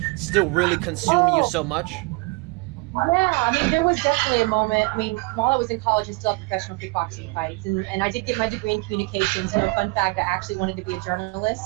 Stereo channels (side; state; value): left; quieter; 26.4 dB